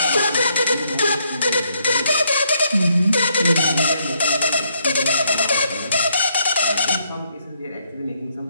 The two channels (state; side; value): inverted; both; correlation -0.72